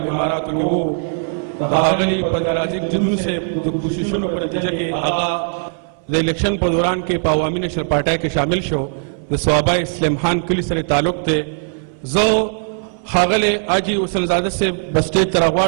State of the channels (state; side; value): silent; left; 64 dB below the other